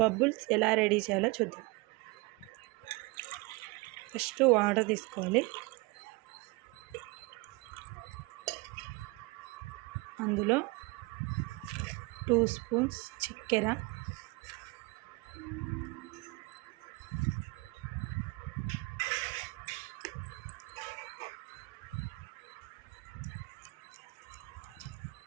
ఎలా రెడీ చేయాలో చూద్దాం. ఫస్ట్ వాటర్ తీసుకోవాలి, అందులో 2 స్పూన్స్ చక్కెర,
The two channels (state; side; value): quieter; left; 24.9 dB